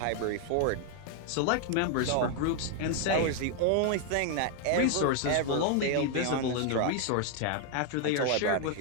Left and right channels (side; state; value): both; different; correlation 0.00